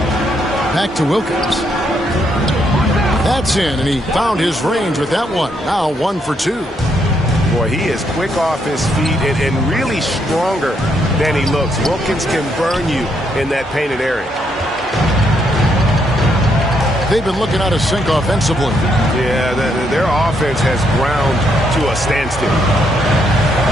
Back to Wilkins. That's in, and he found his range with that one. Now 1 for 2. Boy, he is quick off his feet and really stronger than he looks. Wilkins can burn you in that painted area. They've been looking out of sync offensively. Yeah, their offense has ground to a standstill.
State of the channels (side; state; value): both; normal; correlation 0.75